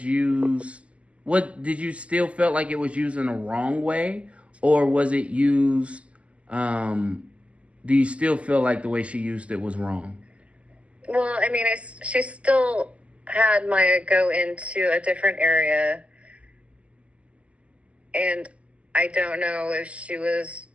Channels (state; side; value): late; left; 0.061 ms